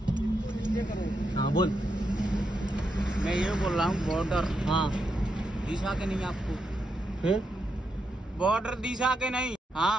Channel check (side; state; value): both; normal; correlation 0.83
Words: हाँ बोल. मैं ये बोल रहा हूँ बॉर्डर हाँ दिशा के नहीं आपको? फिर बॉर्डर दिशा के नहीं.